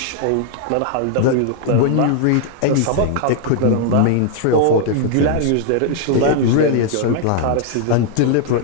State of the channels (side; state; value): both; different; correlation 0.00